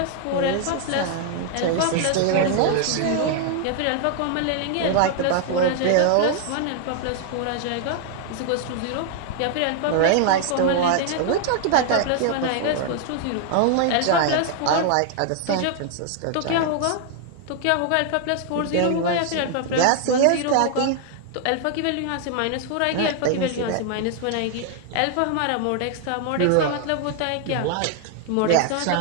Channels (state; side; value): different; both; correlation 0.00